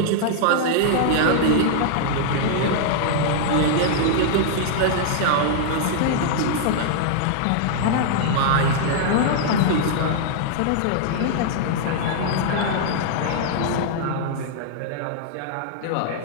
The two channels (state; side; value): different; both; correlation -0.01